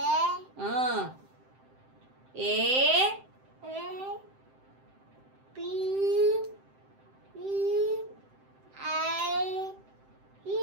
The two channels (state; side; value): late; left; 7.7 ms